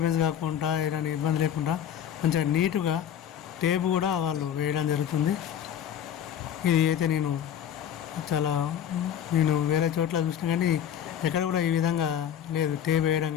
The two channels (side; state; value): right; quieter; 9.6 dB